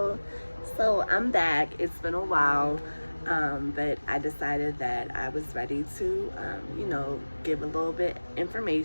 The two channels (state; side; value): inverted; both; correlation -1.00